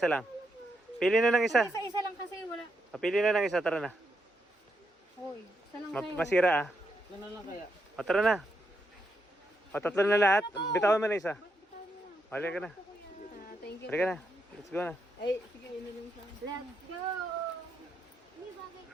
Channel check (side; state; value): both; normal; correlation 0.81